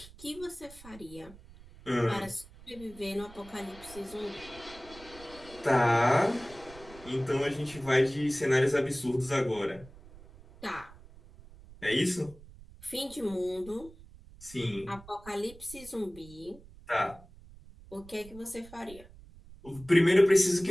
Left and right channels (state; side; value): noise; right; rumble, 20 dB below the sound